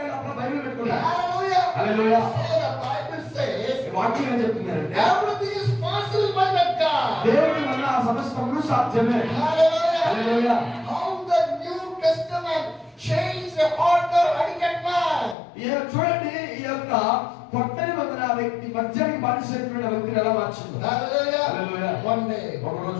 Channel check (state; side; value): drops out; right; at 15.4 s